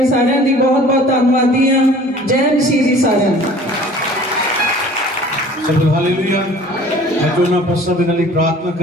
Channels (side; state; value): both; normal; correlation 0.48